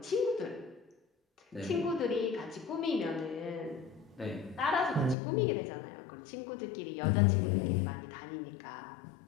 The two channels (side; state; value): right; drops out; at 5.2 s